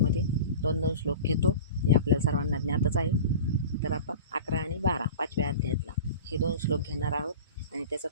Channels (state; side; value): inverted; both; correlation -0.35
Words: 2-2 श्लोक घेतो. हे आपल्याला सर्वांना ज्ञातच आहे. तर आपण 11 आणि 12 5व्या अध्यायातला हे 2 श्लोक घेणार आहोत आणि त्याचा